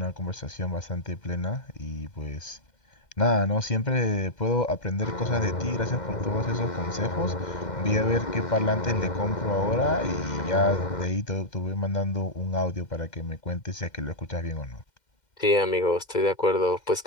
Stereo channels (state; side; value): late; right; 2.1 ms